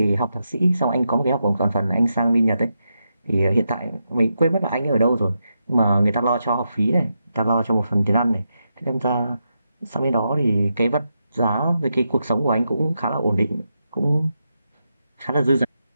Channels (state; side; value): inverted; both; correlation -0.86